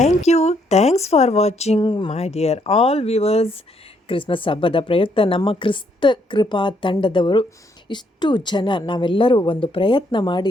Thanks for watching my dear all viewers. Christmas ಹಬ್ಬದ ಪ್ರಯುಕ್ತ ನಮ್ಮ ಕ್ರಿಸ್ತ ಕೃಪಾ ತಂಡದವರು ಇಷ್ಟು ಜನ ನಾವೆಲ್ಲರೂ ಒಂದು ಪ್ರಯತ್ನ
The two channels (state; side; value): normal; both; correlation 0.71